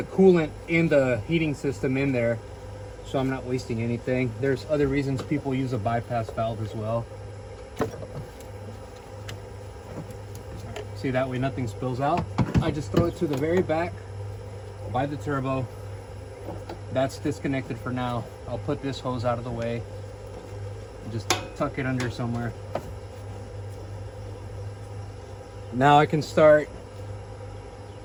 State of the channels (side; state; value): both; identical; correlation 1.00